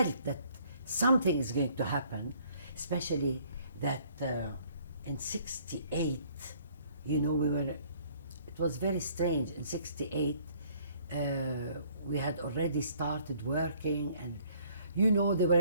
that something is going to happen, especially that in 68, you know, it was very strange. In 68, we had already started working, and, you know, there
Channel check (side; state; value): both; inverted; correlation -0.60